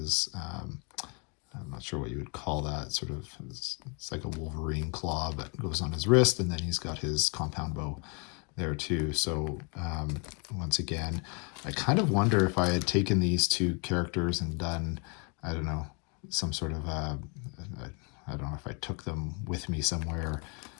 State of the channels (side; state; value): right; quieter; 34.7 dB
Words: I'm not sure what you would call that, sort of, it's like a Wolverine claw that goes on his wrist, and then he's got his compound bow there too. So once again, I kind of wonder if I had taken these two characters and done, I don't know, some sort of, I don't know if I took them with me somewhere,